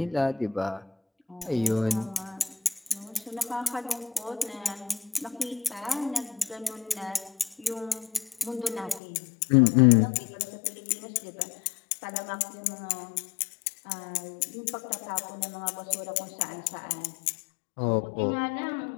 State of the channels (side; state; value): right; drops out; at 9.0 s